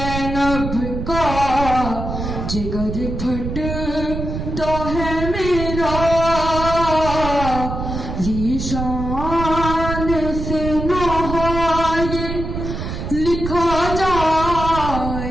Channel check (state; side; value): noise; right; rumble, 5 dB below the sound